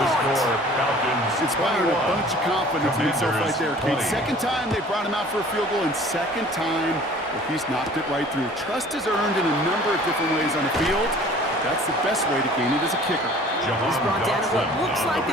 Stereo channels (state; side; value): normal; both; correlation 0.49